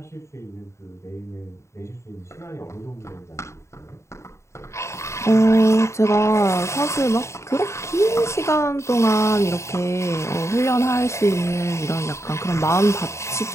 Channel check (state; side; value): late; right; 0.14 ms